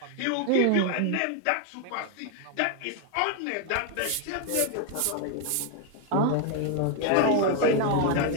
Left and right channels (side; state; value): both; different; correlation 0.01